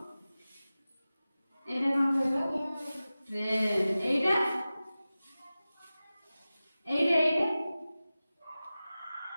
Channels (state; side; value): inverted; both; correlation -0.96